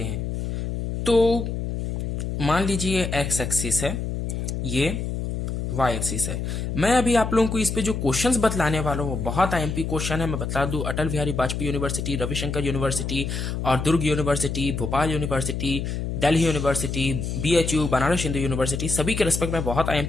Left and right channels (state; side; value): noise; left; hum, 3 dB below the sound